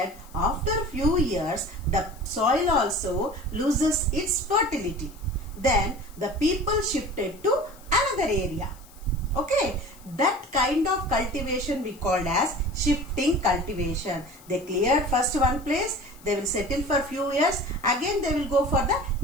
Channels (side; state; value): left; noise; hiss, 24 dB below the sound